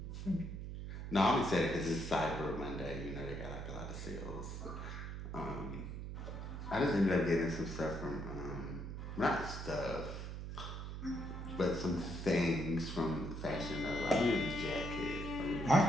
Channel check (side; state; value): right; noise; hum, 7 dB below the sound